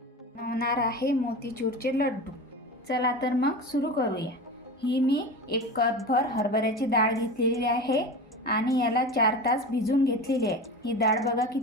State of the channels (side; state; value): both; normal; correlation 0.29